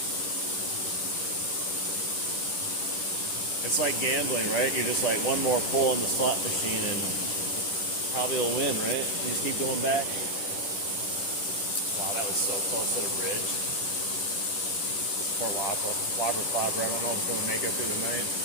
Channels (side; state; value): right; late; 10 ms